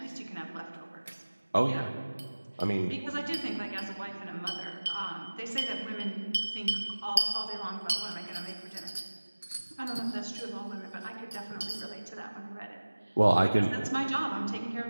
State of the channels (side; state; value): both; inverted; correlation -1.00